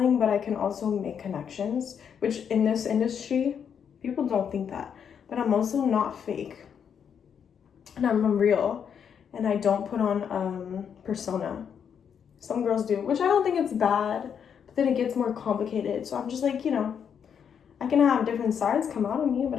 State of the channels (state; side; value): quieter; right; 7.7 dB